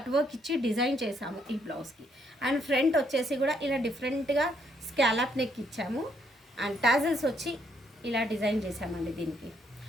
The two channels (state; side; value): normal; both; correlation 0.72